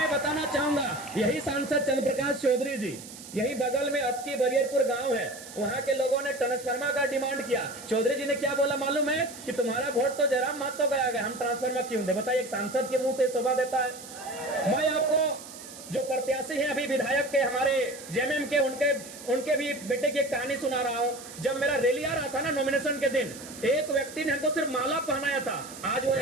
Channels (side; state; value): right; noise; hiss, 15 dB below the sound